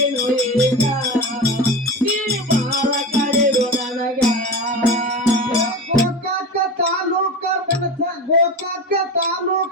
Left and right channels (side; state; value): both; normal; correlation 0.27